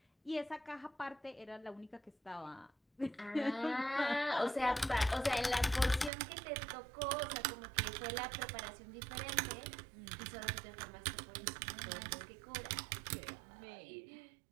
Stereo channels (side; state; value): left; drops out; at 6.1 s